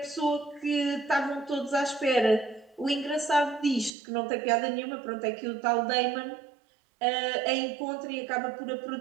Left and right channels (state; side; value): drops out; left; at 4.0 s